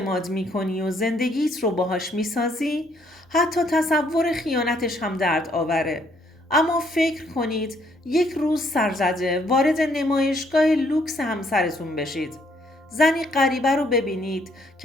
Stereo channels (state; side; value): normal; both; correlation 0.68